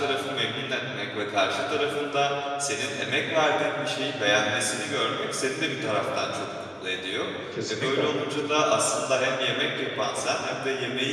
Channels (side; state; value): both; identical; correlation 1.00